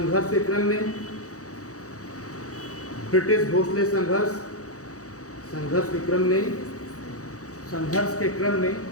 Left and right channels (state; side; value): late; right; 0.66 ms